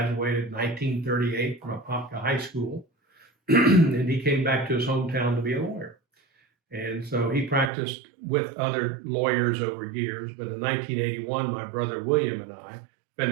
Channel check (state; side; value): drops out; left; at 7.7 s